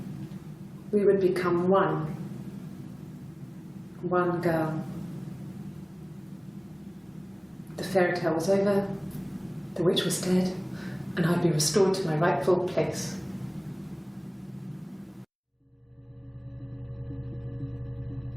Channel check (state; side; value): identical; both; correlation 1.00